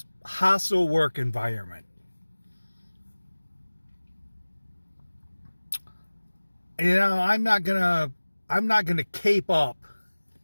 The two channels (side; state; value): both; inverted; correlation -1.00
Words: hostile work environment. You know, I'm not gonna cape up,